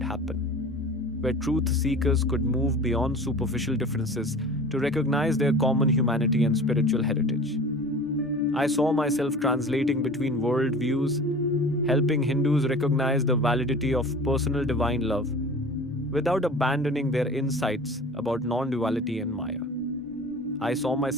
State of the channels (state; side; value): normal; both; correlation 0.40